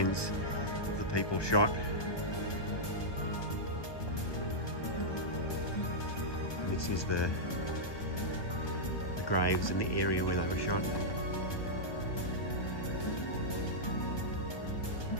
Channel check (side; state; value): right; late; 1.2 ms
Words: of the people shot. And this is the graves in the area where they were shot.